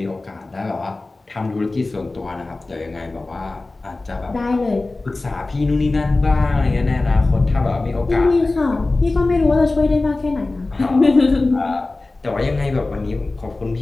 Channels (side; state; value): right; quieter; 3.2 dB